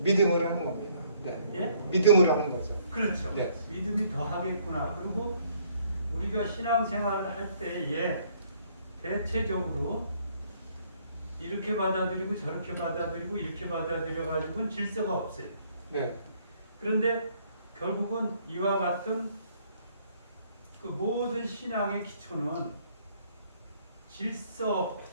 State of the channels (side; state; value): both; inverted; correlation -0.64